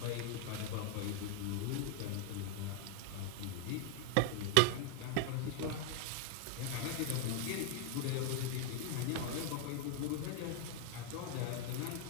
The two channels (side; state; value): both; different; correlation 0.00